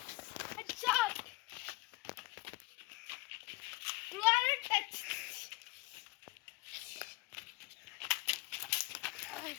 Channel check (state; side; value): quieter; right; 21.7 dB